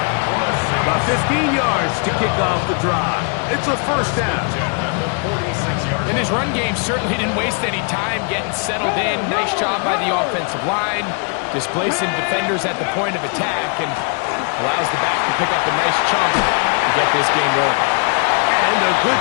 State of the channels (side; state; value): right; quieter; 38.7 dB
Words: About 15 yards to kick off the drive. It's a first down. And his run game certainly didn't waste any time getting settled in. Nice job by the offensive line, displacing defenders at the point of attack, and allows the back to pick up a nice chunk to get this game rolling. And a